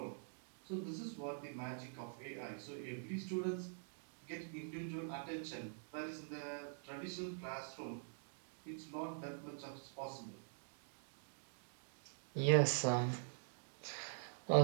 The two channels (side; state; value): left; silent; digital silence